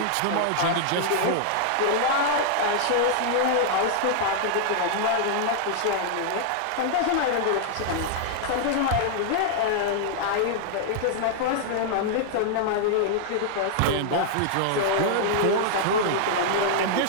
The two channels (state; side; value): different; both; correlation -0.01